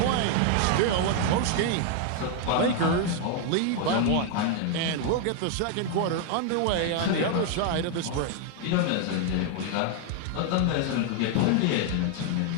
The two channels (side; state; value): both; different; correlation 0.00